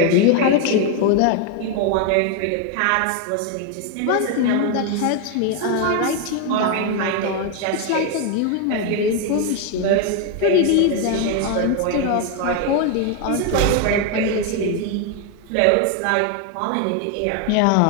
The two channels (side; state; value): both; different; correlation 0.01